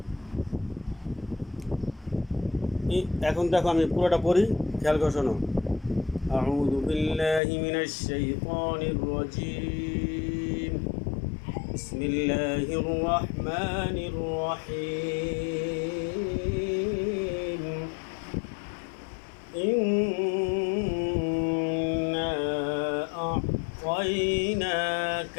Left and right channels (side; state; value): right; drops out; at 7.4 s